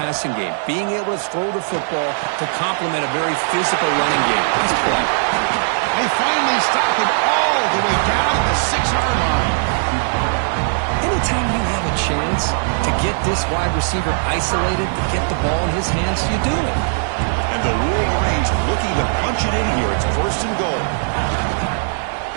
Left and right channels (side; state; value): left; silent; digital silence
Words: game, being able to throw the football to complement a very physical running game. Nice play. They finally stop him all the way down the 6-yard line. Anytime you have a chance to get this wide receiver isolated, to get the ball in his hands, you do it. And the Wolverines looking to punch it in here. It's first and goal.